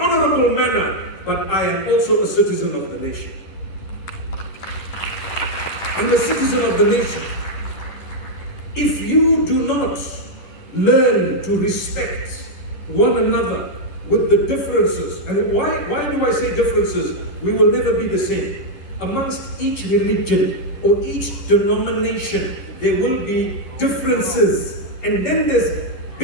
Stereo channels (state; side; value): late; right; 10 ms